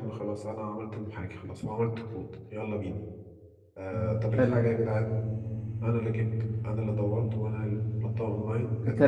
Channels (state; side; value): identical; both; correlation 1.00